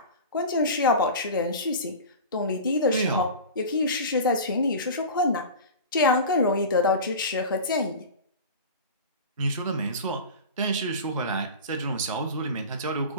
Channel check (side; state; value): both; inverted; correlation -0.32